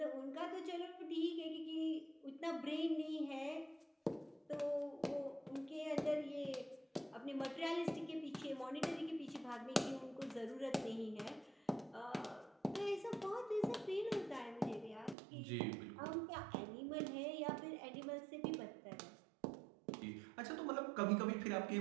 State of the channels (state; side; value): drops out; left; at 15.2 s